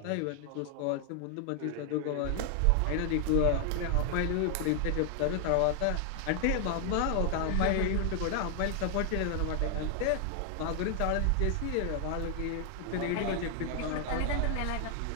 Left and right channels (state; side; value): different; both; correlation 0.00